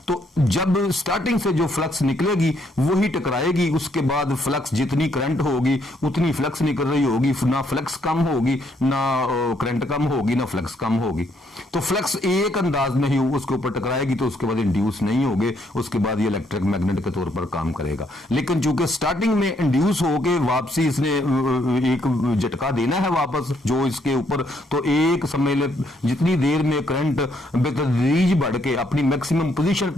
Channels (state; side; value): normal; both; correlation 0.71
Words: तो जब स्टार्टिंग से जो फ्लक्स निकलेगी वही टकराएगी, उसके बाद फ्लक्स जितनी करंट होगी उतनी फ्लक्स निकल रही होगी, ना फ्लक्स कम होगी, ना करंट कम होगी, ना फ्लक्स कम होगी। तो फ्लक्स एक अंदाज में ही उसके ऊपर टकराएगी तो उसके बाद इंड्यूस नहीं होगे, उसके बाद ये इलेक्ट्रिक मैग्नेट के तौर पर काम करेगा। लेकिन चूंकि स्टार्टिंग में इंड्यूस होके वापसी इसने एक झटका देना है वापस जो इसके ऊपर, तो एक समझ ले जितनी देर में करंट बेतदरीज बढ़ के अपनी मैक्सिमम पोजीशन